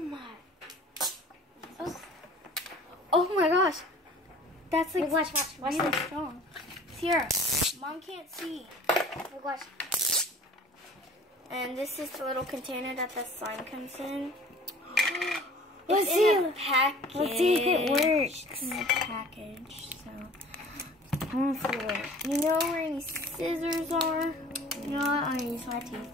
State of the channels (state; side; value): normal; both; correlation 0.47